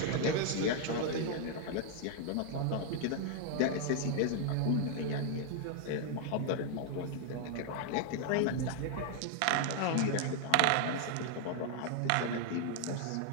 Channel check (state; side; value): different; both; correlation 0.00